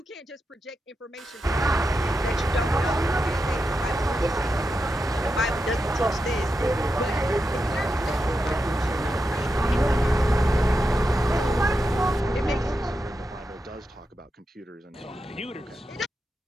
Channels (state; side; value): normal; both; correlation 0.88